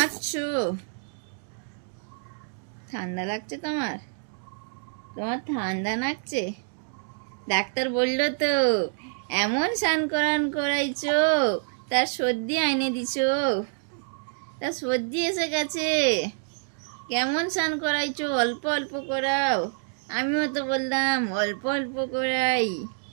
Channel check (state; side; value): silent; left; digital silence